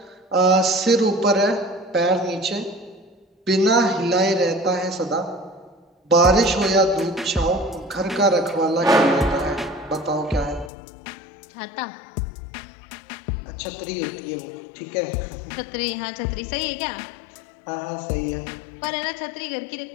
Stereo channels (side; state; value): right; drops out; at 10.7 s